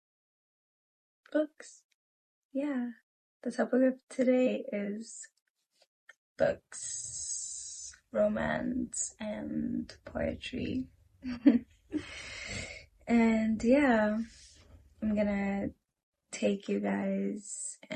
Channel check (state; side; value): identical; both; correlation 1.00